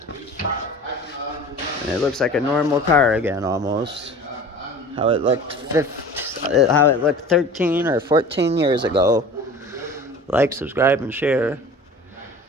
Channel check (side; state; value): both; normal; correlation 0.40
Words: And it looks like a normal car again, almost. How it looked 13 or 14 years ago. Like, subscribe, and share.